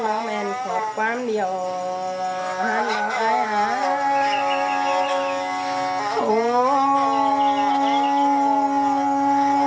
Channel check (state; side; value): identical; both; correlation 1.00